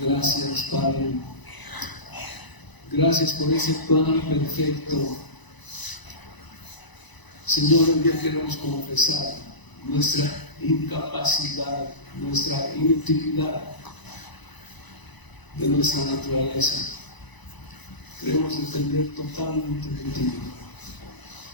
Padre. Gracias por ese plan perfecto. Señor, hoy día queremos confesar nuestra incapacidad, nuestra inutilidad de nuestra naturaleza. Queremos depender totalmente de ti.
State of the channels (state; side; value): late; right; 1.0 ms